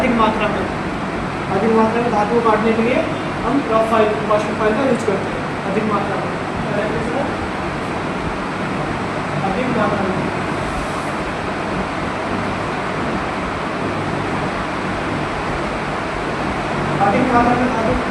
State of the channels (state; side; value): identical; both; correlation 1.00